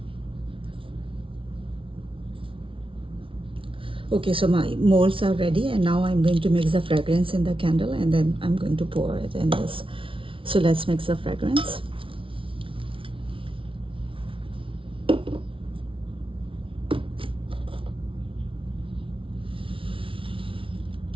Okay, so my molds are ready, and now I'm going to mix the fragrance in the candle, and then I'm going to pour it in this. So let's mix the fragrance.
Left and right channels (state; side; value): late; left; 0.25 ms